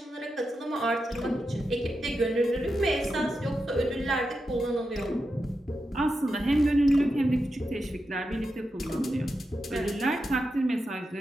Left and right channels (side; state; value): both; normal; correlation 0.88